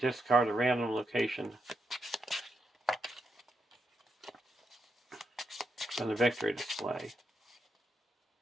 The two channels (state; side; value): normal; both; correlation 0.83